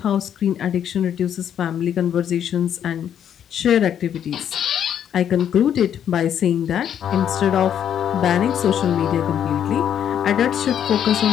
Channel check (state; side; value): quieter; right; 9.4 dB